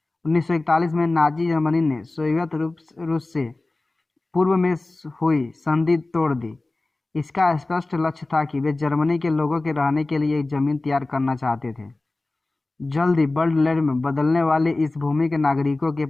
1941 में नाजी जर्मनी ने सोवियत रूस से पूर्व में हुई संधि तोड़ दी। इसका स्पष्ट लक्ष्य था कि वे जर्मनी के लोगों के रहने के लिए एक जमीन तैयार करना चाहते थे। जल्द ही वर्ल्ड लैंड में बदलने वाले इस भूमि के नागरिकों के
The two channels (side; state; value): right; quieter; 3.0 dB